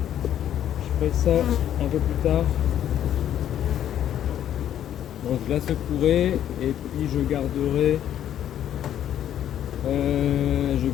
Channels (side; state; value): right; quieter; 10.7 dB